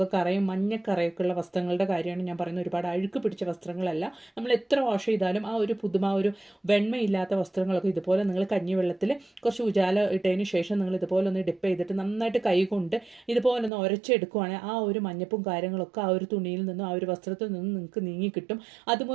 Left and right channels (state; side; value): drops out; left; at 13.7 s